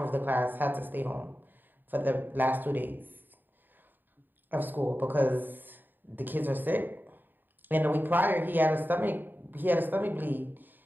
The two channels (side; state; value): left; late; 0.091 ms